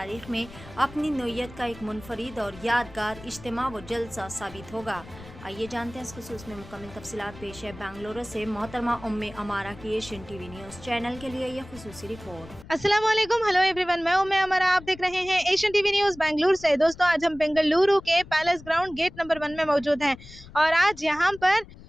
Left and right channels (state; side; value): noise; left; rumble, 18 dB below the sound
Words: में अपनी नोयत का एक मुनफरिद और यादगार इज्तिमा व जलसा साबित होगा। आइए जानते हैं इस खुसूस में मुकम्मल तफसीलात। पेश है बेंगलुरु से मोहतरमा उम्मे अमारा की एशियन TV न्यूज़ चैनल के लिए ये खुसूसी रिपोर्ट। अस्सलाम वालेकुम, हेलो एवरीवन, मैं उम्मे अमारा, आप देख रहे हैं एशियन TV न्यूज़ बेंगलुरु से। दोस्तों, आज हम बेंगलुरु के पैलेस ग्राउंड गेट नंबर 1 में मौजूद हैं और आज यहाँ पर